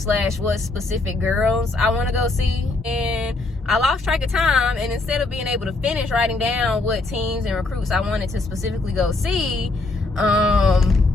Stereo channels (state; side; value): quieter; right; 3.2 dB